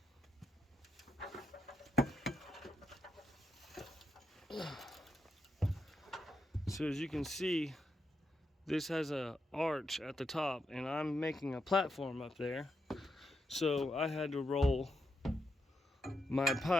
So as you can see, this has an arch at the top, and I'm making a platform up there. So I had to roll my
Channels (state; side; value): normal; both; correlation 0.84